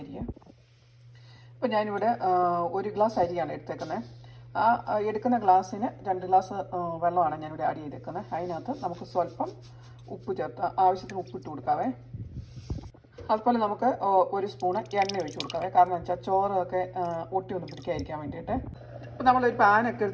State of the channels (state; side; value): identical; both; correlation 1.00